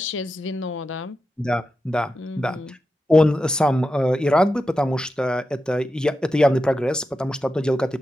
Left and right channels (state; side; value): normal; both; correlation 0.89